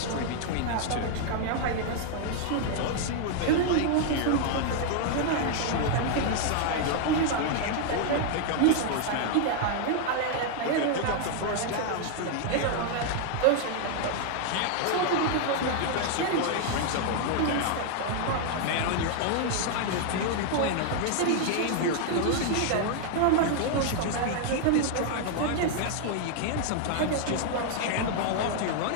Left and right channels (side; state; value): both; different; correlation 0.00